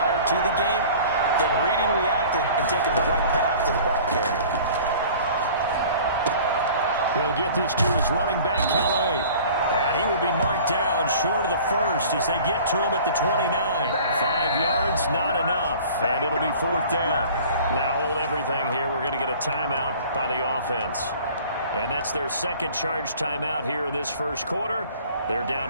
to the game, then reading, reacting, and taking the right path to the ball carrier. He'll get this to his running back, Calais. And he will be marked down short of the first as they get to him at the 29. 5 yards, not enough. And it'll be fourth down. Now hold everything here. We're going to get a timeout by the offense. And that's their second charge timeout here in this first quarter. They're down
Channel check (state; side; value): inverted; both; correlation -0.46